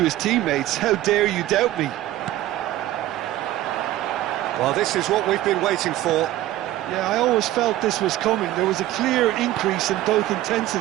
his teammates, how dare you doubt me? Well, this is what we've been waiting for. Yeah, I always felt this was coming. There was a clear increase in both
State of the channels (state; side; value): quieter; left; 14.8 dB